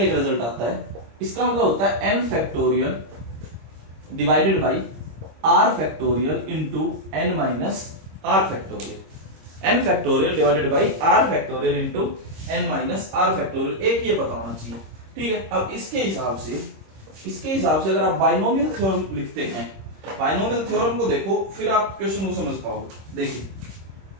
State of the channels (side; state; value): left; late; 26 ms